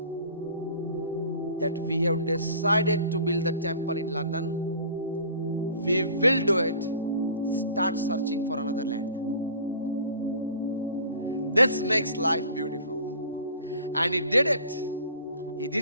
that we have decided to build the temple in London. We will do it. Start searching for another land. This makes life beautiful. And he did it. He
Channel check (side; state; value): both; inverted; correlation -0.46